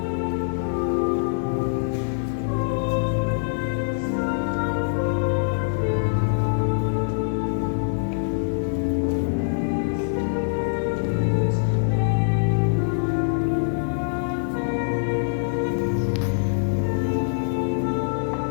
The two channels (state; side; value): silent; right; digital silence